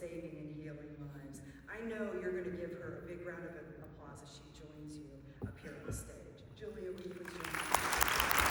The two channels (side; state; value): both; identical; correlation 1.00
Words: and healing lives. I know you're going to give her a big round of applause as she joins you up here on the stage. Julia, will you please join me?